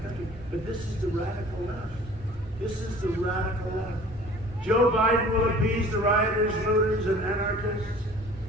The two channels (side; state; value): both; normal; correlation 0.48